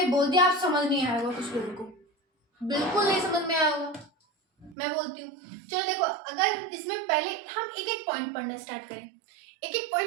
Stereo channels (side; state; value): left; drops out; at 4.8 s